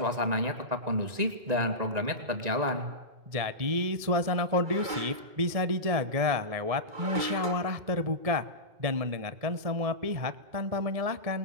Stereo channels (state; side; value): late; left; 1.7 ms